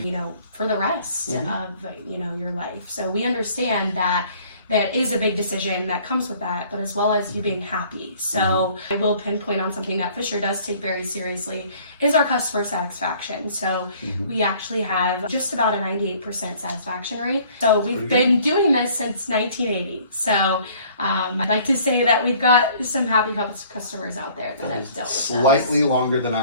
for the rest of, your life. So we understand that is a big decision that comes with that, but as well as you being happy. So I will pinpoint on something that Fisher does take very seriously is our customer satisfaction. So we actually have just about a 98% satisfaction rate. So we've been doing this since 1980. So I'd like to say that we've got some happy customers out there that have dealt with slightly longer than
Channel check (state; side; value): inverted; both; correlation -0.55